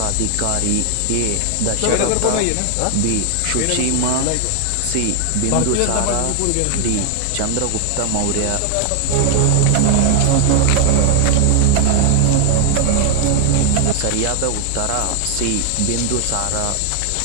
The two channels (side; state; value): both; different; correlation 0.00